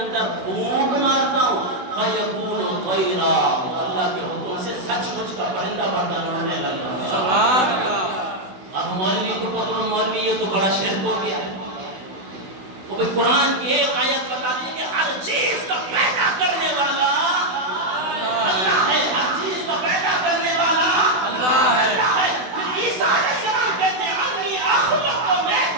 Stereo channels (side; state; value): left; late; 16 ms